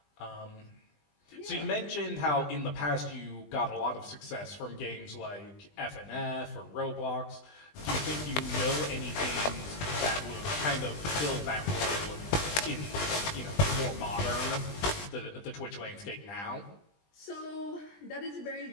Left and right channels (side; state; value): right; late; 20 ms